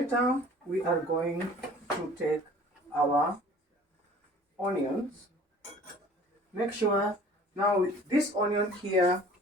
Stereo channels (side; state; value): both; normal; correlation 0.49